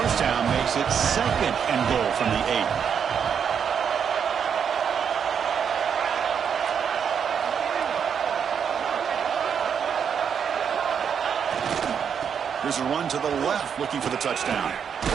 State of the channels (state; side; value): quieter; left; 7.4 dB